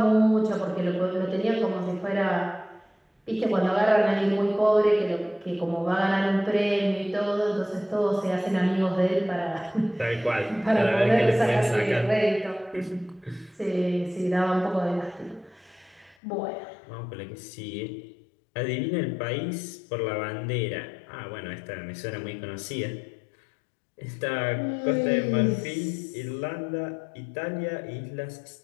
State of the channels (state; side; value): drops out; right; at 16.2 s